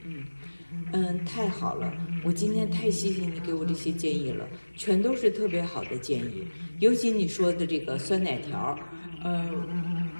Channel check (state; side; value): inverted; both; correlation -1.00